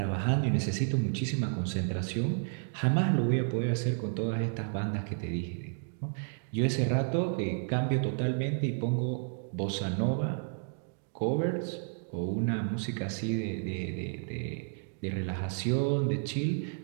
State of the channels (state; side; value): silent; left; 57 dB below the other